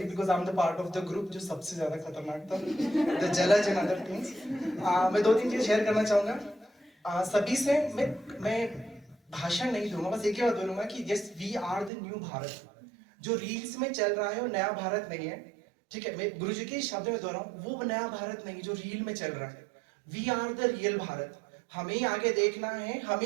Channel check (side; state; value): left; drops out; at 11.9 s